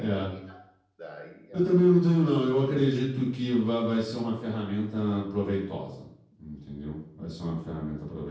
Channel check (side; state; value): both; identical; correlation 1.00